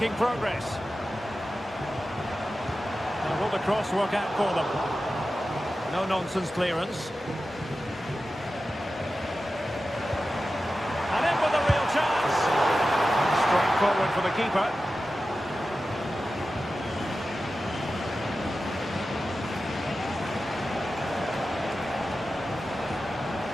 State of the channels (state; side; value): normal; both; correlation 0.93